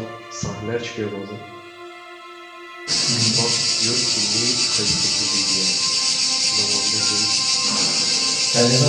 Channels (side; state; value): both; identical; correlation 1.00